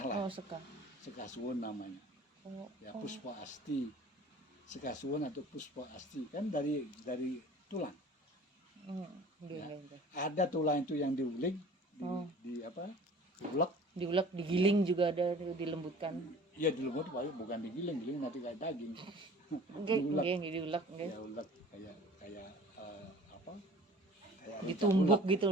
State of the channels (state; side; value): normal; both; correlation 0.46